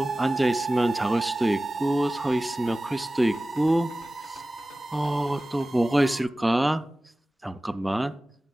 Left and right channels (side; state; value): both; normal; correlation 0.97